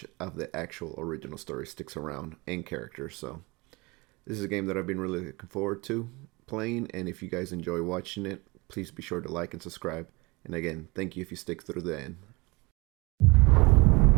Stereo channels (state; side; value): quieter; left; 25.2 dB